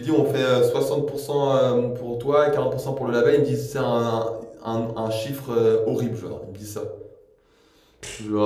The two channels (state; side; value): identical; both; correlation 1.00